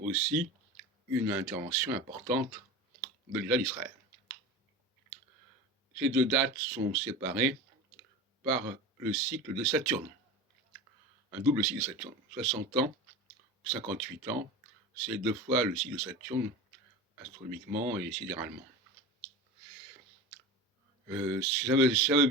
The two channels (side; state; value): both; normal; correlation 0.30